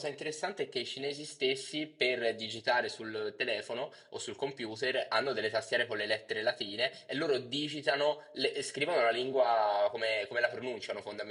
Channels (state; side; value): identical; both; correlation 1.00